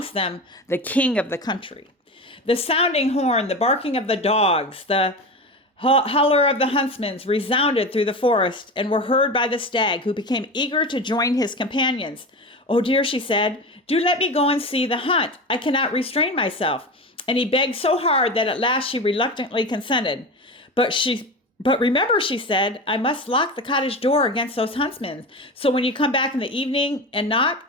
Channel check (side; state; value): both; normal; correlation 0.26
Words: them the king of the country. The sounding horn, the barking of the dogs, the holler of the huntsmen resounded through the forest and were heard by the stag, who became eager to join his companions. "Oh dear," she said, "do let me go and see the hunt. I cannot restrain myself." And he begged so hard that at last she reluctantly consented. But remember," she said, "I must lock the cottage door against those huntsmen. So when you come back in the evening and knock,